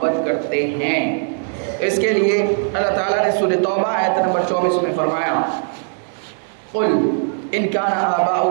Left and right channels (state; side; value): silent; left; digital silence